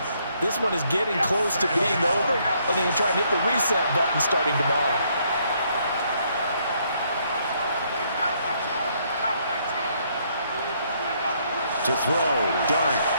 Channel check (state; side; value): inverted; both; correlation -0.70